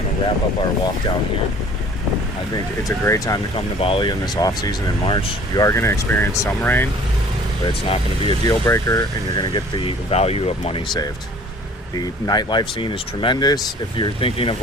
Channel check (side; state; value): both; normal; correlation 0.50